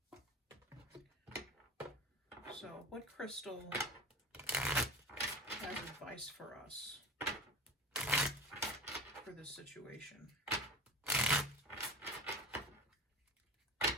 So, what crystal has advice for us for this situation?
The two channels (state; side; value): normal; both; correlation 0.31